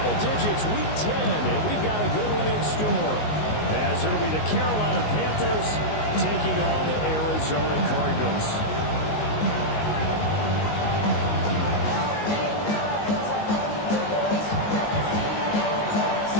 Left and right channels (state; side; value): late; right; 19 ms